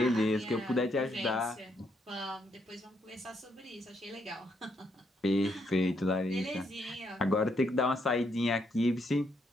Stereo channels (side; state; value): both; normal; correlation 0.75